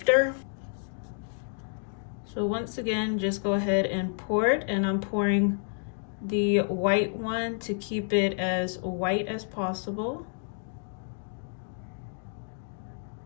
So once again, just go ahead and pour it, and I'm pouring the white one to keep it as white as possible.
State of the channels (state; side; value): silent; right; digital silence